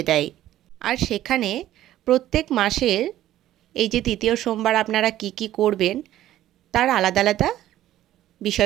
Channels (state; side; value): quieter; left; 13.4 dB